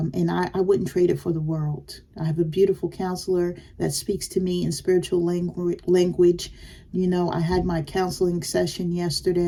I wouldn't trade it for the world. I have a beautiful counselor that speaks to me in spiritual language. I had my counseling session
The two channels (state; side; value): identical; both; correlation 1.00